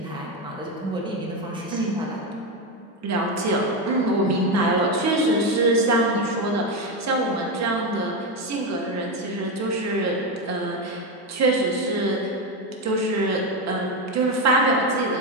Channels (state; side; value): normal; both; correlation 0.11